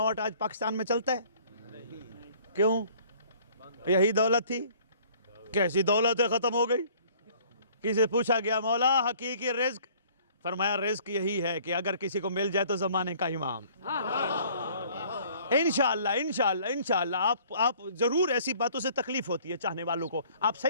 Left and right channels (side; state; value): both; inverted; correlation -0.55